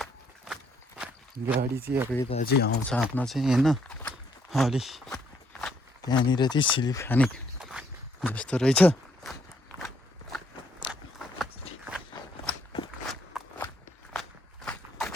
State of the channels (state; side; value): normal; both; correlation 0.70